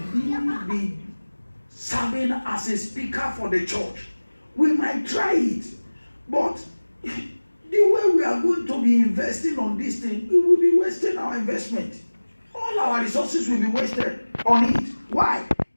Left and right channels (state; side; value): inverted; both; correlation -1.00